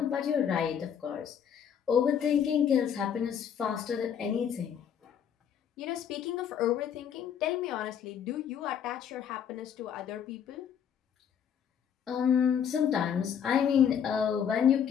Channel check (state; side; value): quieter; right; 8.3 dB